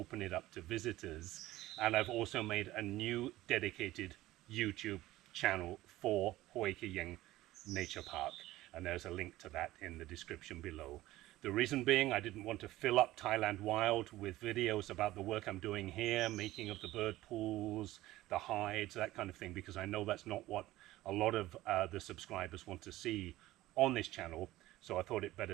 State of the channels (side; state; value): left; quieter; 16.5 dB